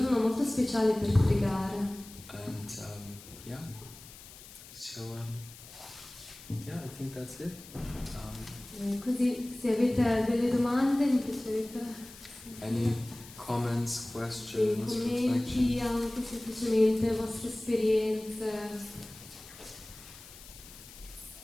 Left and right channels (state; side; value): noise; left; hiss, 18 dB below the sound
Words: molto speciale per pregare. And yeah. So yeah, I think that's it. Così se avete delle domande mi piacerebbe. Any comments, questions, Commenti, reflections? anche semplicemente vostre esperienze.